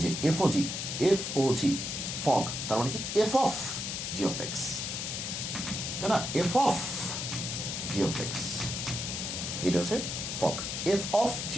যে এফ ও জি ফগ তার মানে কি f of g of x তাই না f of g of x এটা হচ্ছে fog f of g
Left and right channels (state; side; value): noise; left; hiss, 3 dB below the sound